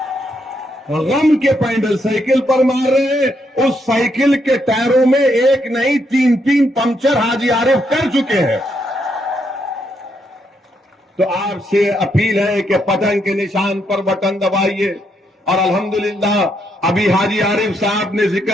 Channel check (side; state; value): both; normal; correlation 0.77